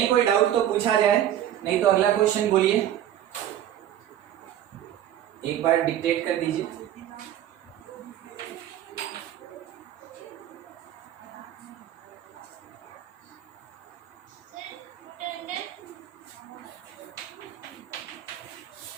कोई डाउट तो पूछा जाए, नहीं तो अगला क्वेश्चन बोलिए, एक बार डिक्टेट कर दीजिए।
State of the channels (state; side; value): quieter; left; 11.4 dB